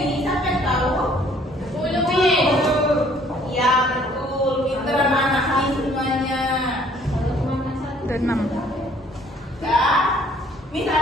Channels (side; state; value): both; normal; correlation 0.59